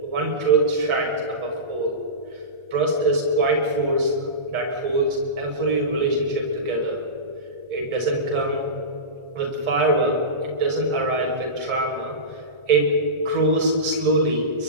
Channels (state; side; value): late; left; 1.4 ms